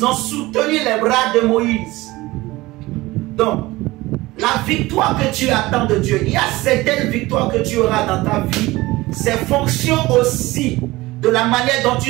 ont soutenu les bras de Moïse. Donc, la victoire que tu attends de Dieu, il y a certaines victoires que tu auras dans ta vie. C'est fonction aussi de la manière dont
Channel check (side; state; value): left; quieter; 19.7 dB